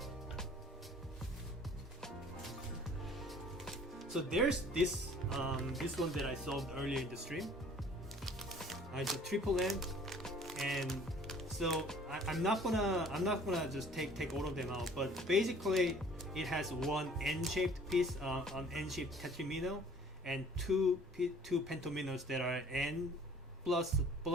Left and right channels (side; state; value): both; normal; correlation 0.52